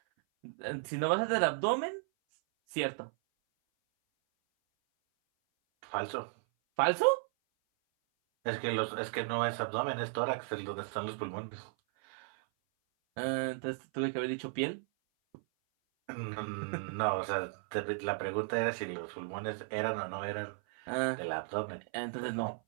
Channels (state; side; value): silent; left; 54 dB below the other